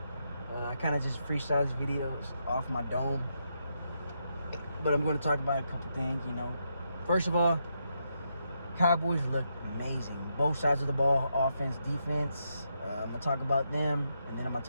I kind of just freestyle these videos off my dome, but I'm gonna talk about a couple things, you know. First of all, Cowboys look amazing. Both sides of the ball, offense, defense. I'm gonna talk about them, and then I'm gonna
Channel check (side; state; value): both; inverted; correlation -0.81